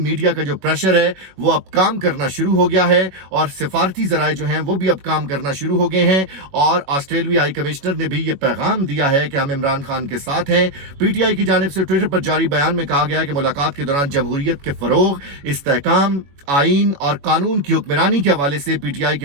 का जो प्रेशर है वो अब काम करना शुरू हो गया है और सिफारती ज़राए जो हैं वो भी अब काम करना शुरू हो गए हैं। और ऑस्ट्रेलवी हाई कमिश्नर ने भी ये पैगाम दिया है कि हम इमरान खान के साथ हैं। पीटीआई की जानिब से ट्विटर पर जारी बयान में कहा गया है कि मुलाकात के दौरान जमहूरियत के फरोग, इस्तेहकाम, आईन और कानून की हुक्मरानी के हवाले से पीटीआई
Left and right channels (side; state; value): left; late; 21 ms